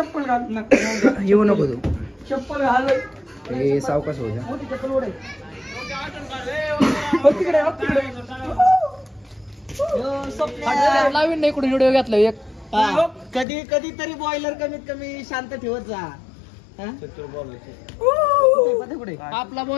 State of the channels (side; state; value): right; drops out; at 13.5 s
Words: घाल येऊ नको तू चप्पल घाल हे सावकाश हो चप्पल नवीन नाही कुठे व्हिडिओ घेतला एक कधी कधी तरी बॉयलर कमीत कमी शांत ठेवत जा. आपला